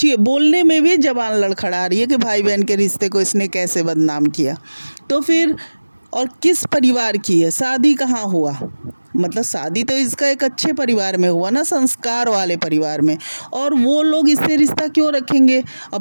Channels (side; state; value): both; inverted; correlation -1.00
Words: बोलने में भी ज़बान लड़खड़ा रही है कि भाई बहन के रिश्ते को इसने कैसे बदनाम किया। तो फिर और किस परिवार की है, शादी कहाँ हुआ, मतलब शादी तो इसका एक अच्छे परिवार में हुआ ना, संस्कार वाले परिवार में, और वो लोग इससे रिश्ता क्यों रखेंगे। अब